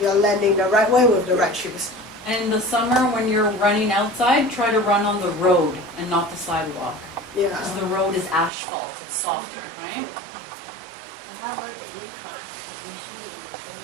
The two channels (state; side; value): drops out; left; at 8.5 s